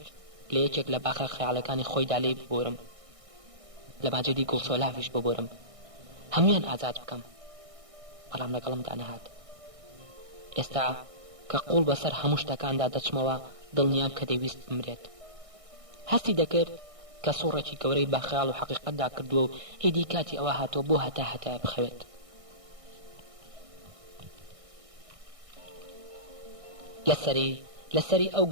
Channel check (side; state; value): left; late; 1.6 ms